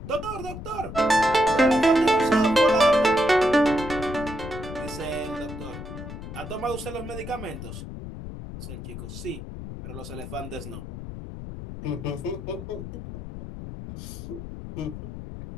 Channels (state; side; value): noise; left; rumble, 10 dB below the sound